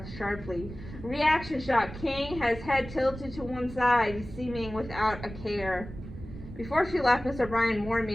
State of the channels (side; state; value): right; noise; rumble, 13 dB below the sound